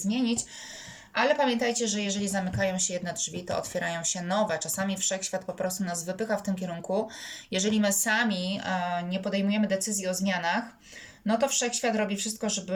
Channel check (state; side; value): identical; both; correlation 1.00